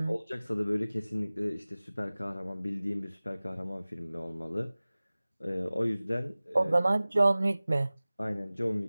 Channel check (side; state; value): both; inverted; correlation -0.98